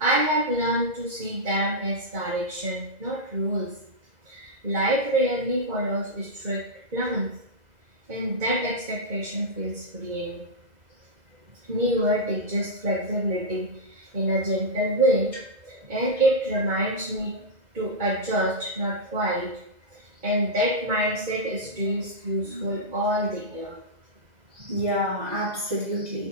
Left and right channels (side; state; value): left; late; 2.0 ms